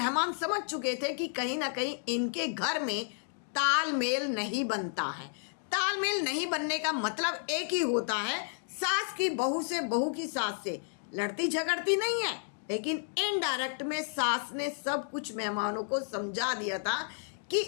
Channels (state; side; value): silent; right; digital silence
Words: समझ चुके थे कि कहीं ना कहीं इनके घर में तालमेल नहीं बनता है। तालमेल नहीं बनने का मतलब एक ही होता है, सास की बहू से, बहू की सास से लड़ती झगड़ती नहीं है। लेकिन इनडायरेक्ट में सास ने सब कुछ मेहमानों को समझा दिया था कि